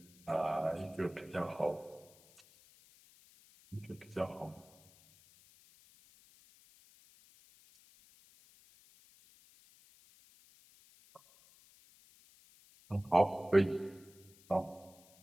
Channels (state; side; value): noise; left; hiss, 26 dB below the sound